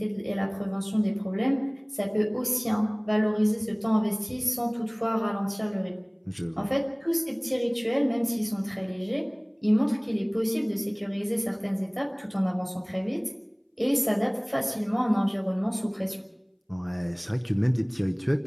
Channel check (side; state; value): both; identical; correlation 1.00